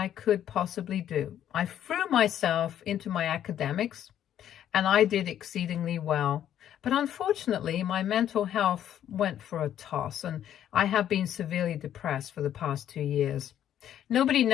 could possibly do. I threw myself into my academics and I did exceedingly well. But unfortunately, my mental health went for a toss and I have been severely depressed for the past 2 years. Nobody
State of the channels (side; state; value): right; quieter; 10.7 dB